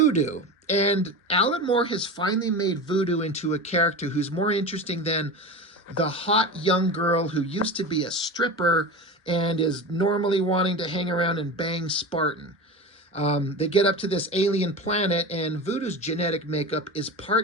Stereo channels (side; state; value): both; normal; correlation 0.27